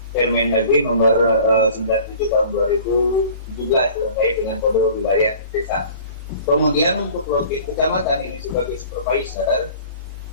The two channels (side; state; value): both; inverted; correlation -0.46